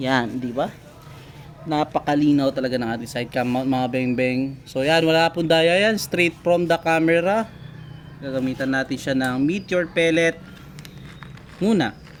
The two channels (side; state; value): both; identical; correlation 1.00